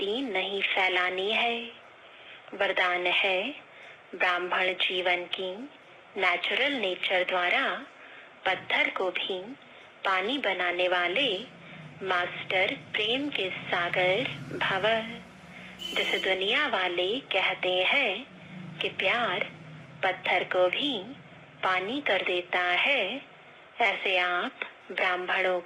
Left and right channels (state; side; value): identical; both; correlation 1.00